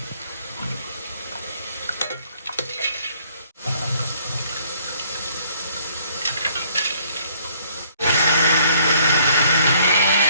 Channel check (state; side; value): inverted; both; correlation -0.62